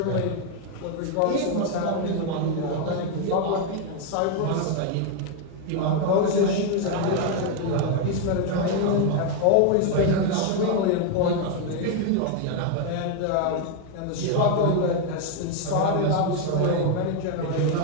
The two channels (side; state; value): both; different; correlation 0.01